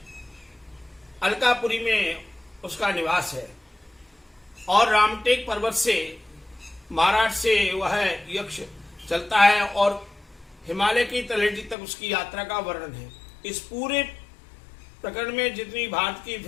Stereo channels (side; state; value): right; drops out; at 11.8 s